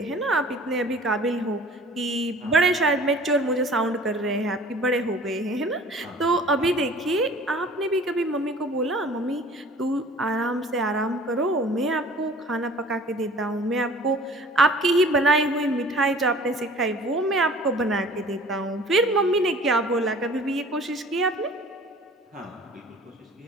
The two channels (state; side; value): normal; both; correlation 0.48